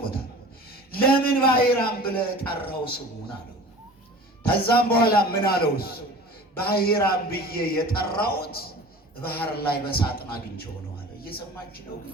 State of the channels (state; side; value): normal; both; correlation 0.41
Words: ለምን ባሕራም ብለህ ጠራው ስሙን አለው። ከዛም በኋላ ምን አለው? እሱ ባሕራም ብዬ የጠራሁት ባህር ላይ በሳጥን አግኝቼው ነው አለ። እየሰማችሁ ነው?